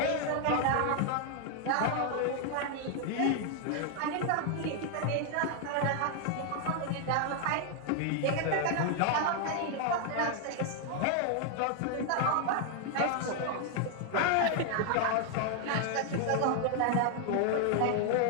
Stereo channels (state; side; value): different; both; correlation 0.00